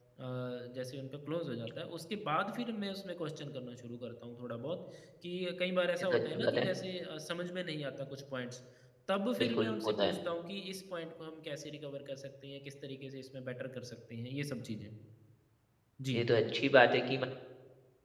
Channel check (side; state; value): both; identical; correlation 1.00